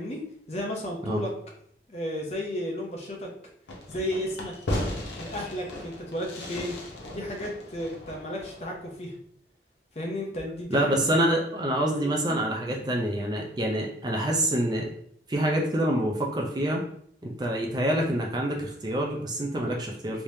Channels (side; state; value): both; normal; correlation 0.55